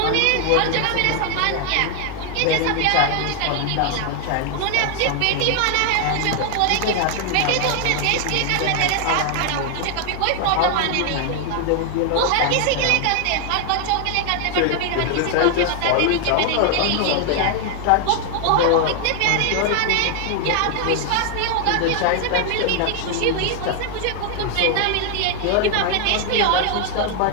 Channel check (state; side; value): different; both; correlation 0.00